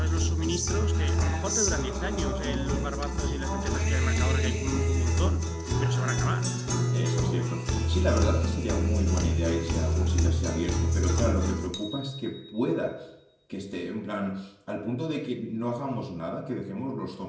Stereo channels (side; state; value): both; identical; correlation 1.00